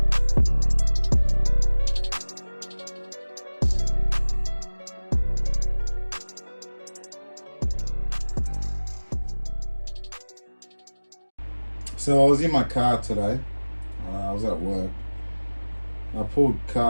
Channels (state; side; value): inverted; both; correlation -1.00